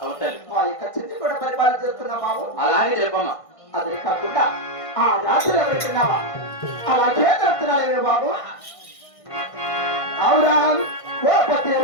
అవును తల్లి ఆ ఇక చెంది కూడా పరిపాలన చేస్తున్నా బాబు అలాగే చెప్పమ్మ అదే కాకుండా ఆ రాత్రి ఎవరికిన్నావా అలాగే చెప్తున్నాడు బాబు అవురా ఓ పతి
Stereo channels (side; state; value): right; late; 1.5 ms